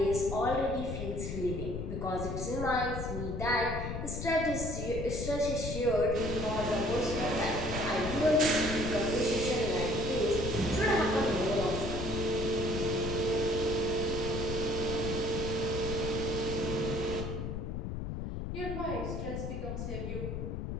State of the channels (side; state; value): left; noise; rumble, 4 dB below the sound